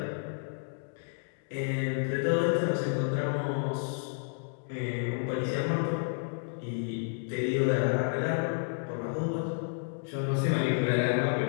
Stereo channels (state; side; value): silent; right; digital silence